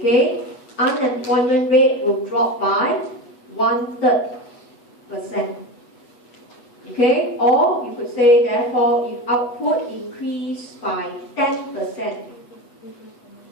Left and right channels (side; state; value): right; late; 8.1 ms